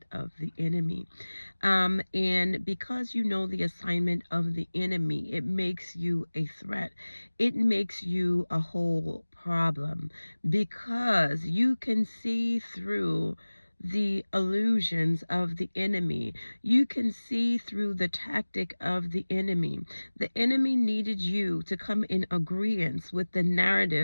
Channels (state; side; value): inverted; both; correlation -1.00